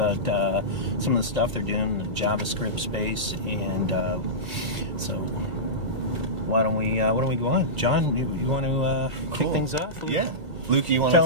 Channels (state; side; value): late; left; 2.0 ms